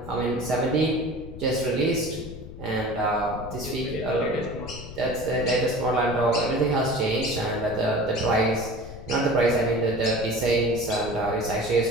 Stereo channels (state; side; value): noise; left; rumble, 13 dB below the sound